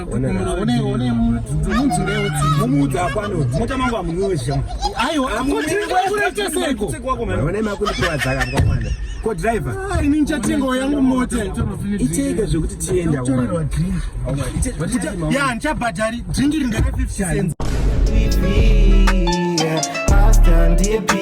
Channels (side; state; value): both; identical; correlation 1.00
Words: One munzi ndewe tsi. Mumudza apano. Mota mangu amunwesha. Aiwa akuti kurete seko. One makundi kwa dzaka mkamwana. Ko driver. Ini nchatengo yangu mota. Icheke zvokuti tienda kwa. Ya nchabhadhari dringi ringana 50 cents. Hasta